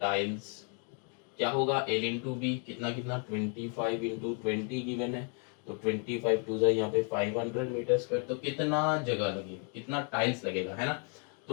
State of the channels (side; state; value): right; quieter; 40.0 dB